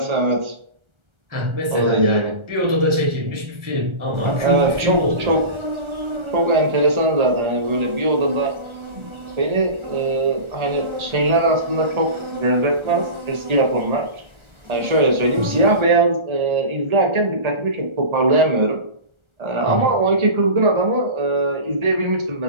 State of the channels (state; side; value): late; left; 1.3 ms